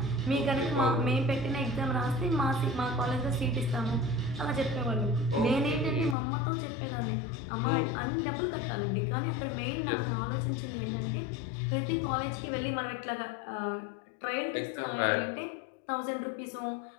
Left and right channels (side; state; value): right; drops out; at 6.2 s